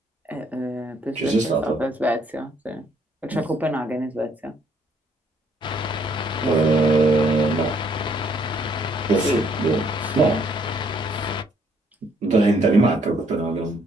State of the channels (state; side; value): normal; both; correlation 0.67